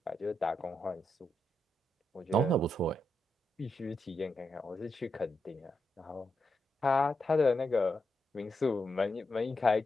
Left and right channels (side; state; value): both; normal; correlation 0.84